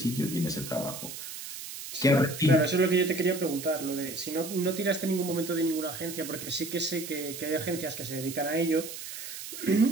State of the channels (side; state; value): right; noise; hiss, 10 dB below the sound